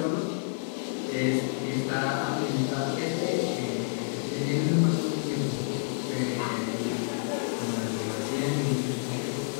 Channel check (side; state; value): right; silent; digital silence